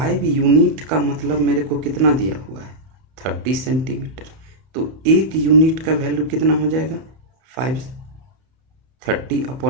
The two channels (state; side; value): late; left; 31 ms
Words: यूनिट का मतलब मेरे को कितना दिया हुआ है 30 सेंटीमीटर, तो 1 यूनिट का वैल्यू कितना हो जाएगा